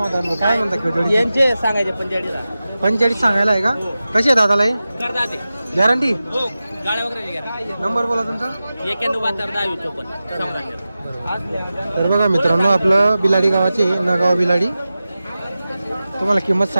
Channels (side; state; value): both; inverted; correlation -0.95